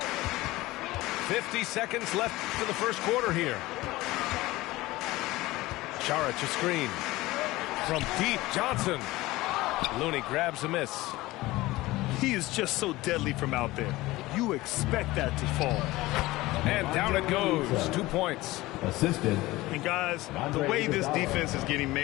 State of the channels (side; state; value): right; quieter; 19.0 dB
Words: 50 seconds left to the first quarter here. Saric a screen. From deep, Johnson. Looney grabs a miss. He is just so deadly from out there. You expect that to fall. And down it goes. 2 points. Assisted. And guys, the way this defense is getting